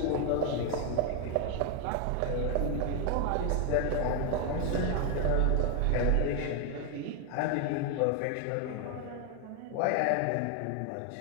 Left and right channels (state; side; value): different; both; correlation 0.01